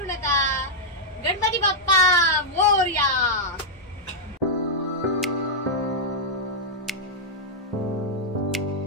नका. गणपती बाप्पा मोरया.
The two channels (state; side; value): normal; both; correlation -0.05